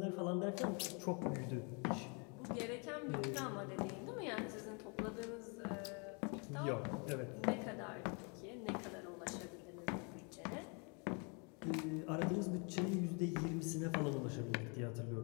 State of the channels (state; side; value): quieter; right; 34.5 dB